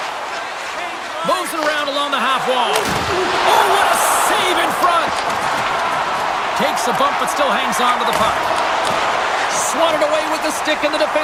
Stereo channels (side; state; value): both; identical; correlation 1.00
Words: Moves it around along the half wall. Oh, what a save in front. Takes a bump but still hangs on to the puck. Swatted away with the stick in the